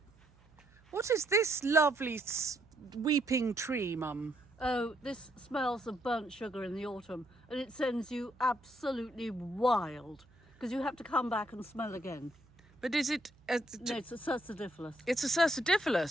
What is this lovely weeping tree, Mum? Oh, this smells of burnt sugar in the autumn, and it sends you absolutely wild because you have to come back and smell again. But is it? No, it's a cercidiphilus. It's a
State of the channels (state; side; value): noise; right; hum, 28 dB below the sound